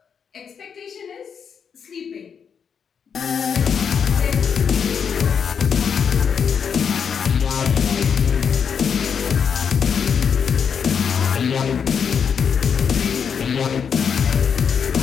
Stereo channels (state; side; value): quieter; right; 6.9 dB